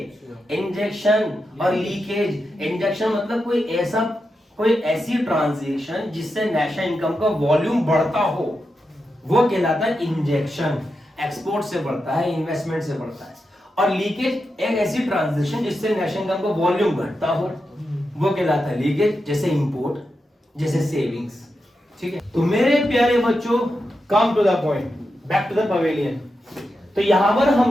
इंजेक्शन और लीकेज। इंजेक्शन मतलब कोई ऐसी ट्रांजैक्शन जिससे नेशनल इनकम का वॉल्यूम बढ़ता हो, वो कहलाता है इंजेक्शन। एक्सपोर्ट से बढ़ता है, इन्वेस्टमेंट से बढ़ता है। और लीकेज एक ऐसी ट्रांजैक्शन जिससे नेशनल इनकम का वॉल्यूम घटता हो, वो कहलाता है लीकेज। जैसे इंपोर्ट, जैसे सेविंग्स। ठीक है, तो मेरे प्यारे बच्चों, come to the point, back to the pavilion. तो यहां पर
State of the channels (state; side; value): normal; both; correlation 0.88